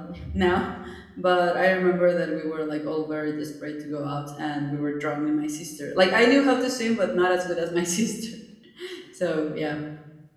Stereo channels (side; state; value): both; identical; correlation 1.00